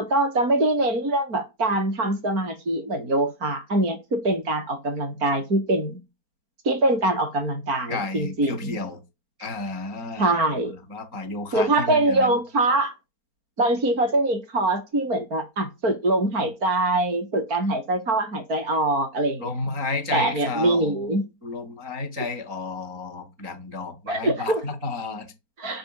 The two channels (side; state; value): left; late; 4.3 ms